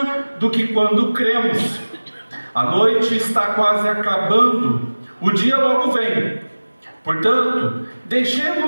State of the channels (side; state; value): both; inverted; correlation -1.00